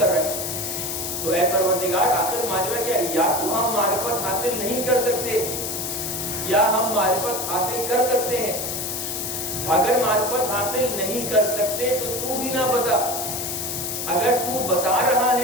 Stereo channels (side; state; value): left; noise; hiss, 4 dB below the sound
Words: رہے ہیں۔ تو اے پروردگار، آخر ماجرا کیا؟ یا تو ہم معرفت حاصل نہیں کر سکتے یا ہم معرفت حاصل کر سکتے ہیں۔ اگر معرفت حاصل نہیں کر سکتے تو بھی نہ بتا، اگر تو بتا رہا